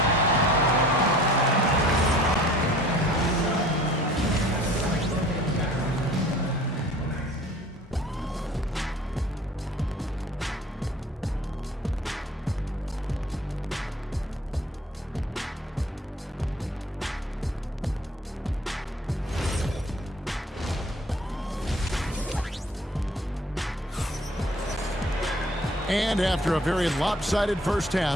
And after a very lopsided first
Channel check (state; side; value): normal; both; correlation 0.50